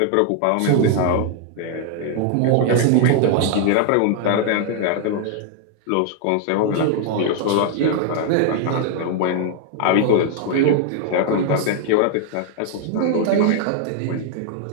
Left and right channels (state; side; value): different; both; correlation 0.00